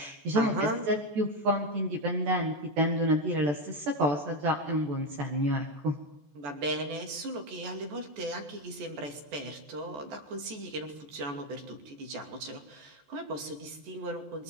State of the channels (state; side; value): late; left; 14 ms